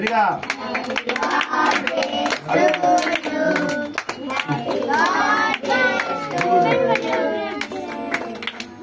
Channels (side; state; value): both; identical; correlation 1.00